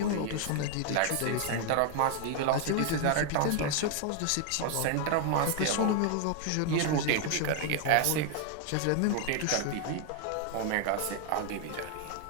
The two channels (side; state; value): both; different; correlation 0.00